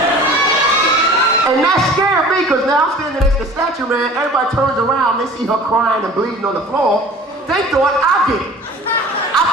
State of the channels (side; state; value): both; normal; correlation 0.44